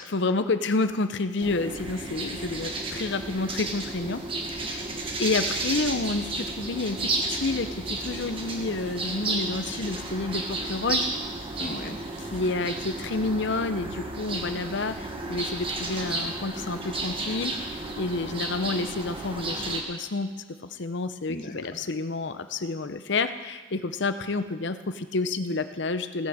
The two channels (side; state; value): both; normal; correlation 0.25